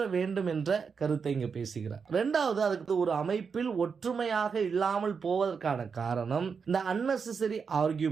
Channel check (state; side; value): quieter; left; 5.8 dB